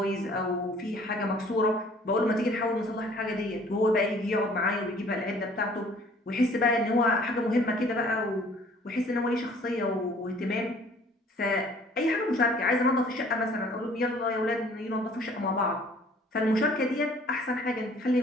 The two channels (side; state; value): both; normal; correlation 0.55